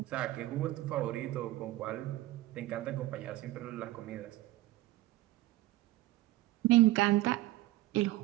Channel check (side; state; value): left; quieter; 17.1 dB